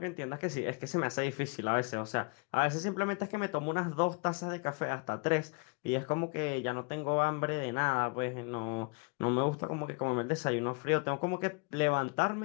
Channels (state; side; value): quieter; right; 31.9 dB